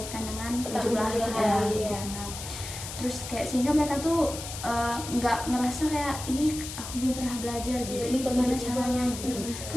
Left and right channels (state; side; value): noise; left; hiss, 9 dB below the sound